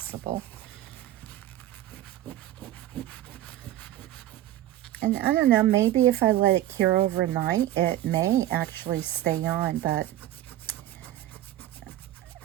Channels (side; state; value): left; quieter; 13.6 dB